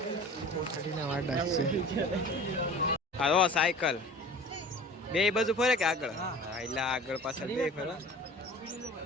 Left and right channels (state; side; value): normal; both; correlation 0.41